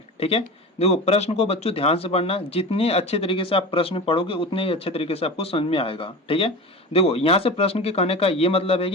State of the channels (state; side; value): normal; both; correlation 0.31